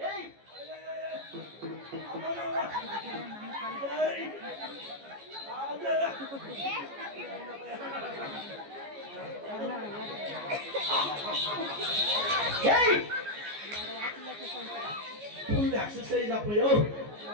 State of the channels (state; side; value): late; left; 14 ms